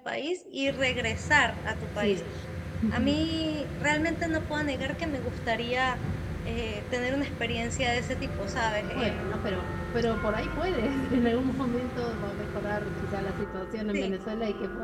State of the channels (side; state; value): both; identical; correlation 1.00